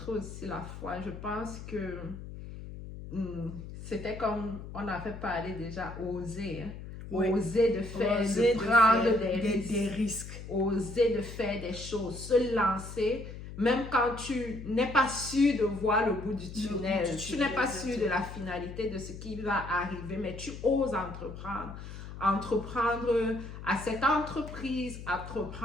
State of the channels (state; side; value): noise; left; hum, 11 dB below the sound